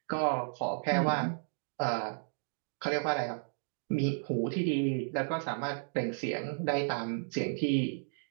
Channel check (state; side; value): silent; left; digital silence